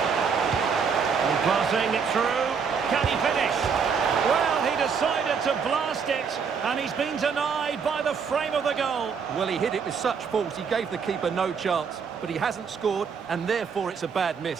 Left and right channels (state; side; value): quieter; left; 6.1 dB